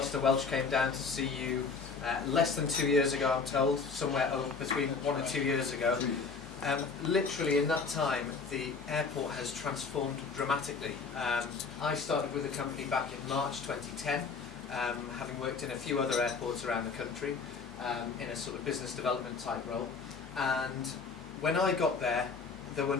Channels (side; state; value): right; quieter; 4.9 dB